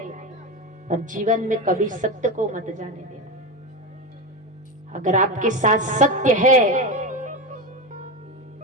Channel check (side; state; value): both; normal; correlation 0.17